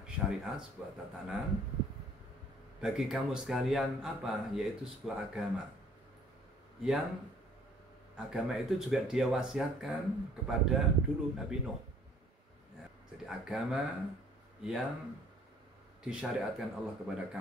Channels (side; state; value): both; normal; correlation 0.58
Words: syariat, sebuah tatanan bagi kamu sekalian apa? Yaitu sebuah agama. Yang agama itu juga dia wasiatkan kepada dulu Nabi Nuh. Ya, jadi agama yang disyariatkan Allah kepada